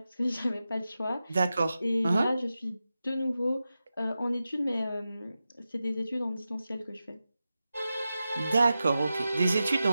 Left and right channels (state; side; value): inverted; both; correlation -0.92